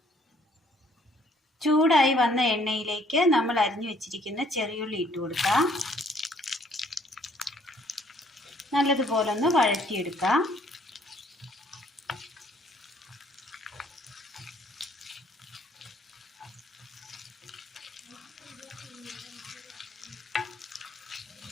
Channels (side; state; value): both; normal; correlation 0.63